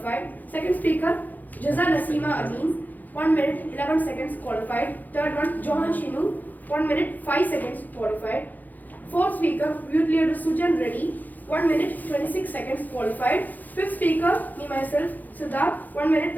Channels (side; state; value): right; late; 0.083 ms